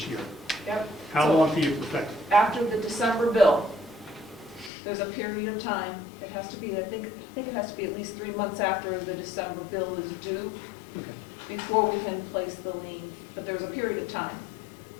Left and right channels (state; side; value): drops out; right; at 4.7 s